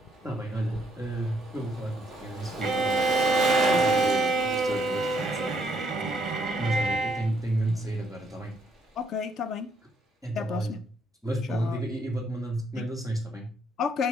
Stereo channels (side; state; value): both; normal; correlation 0.71